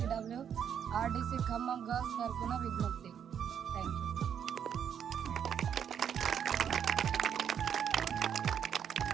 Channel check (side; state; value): left; quieter; 8.4 dB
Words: RDC ఖమ్మం గర్ల్స్ తరఫున విజ్ఞప్తి. Thank you.